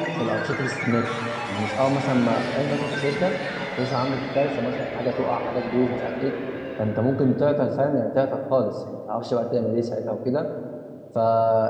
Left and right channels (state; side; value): identical; both; correlation 1.00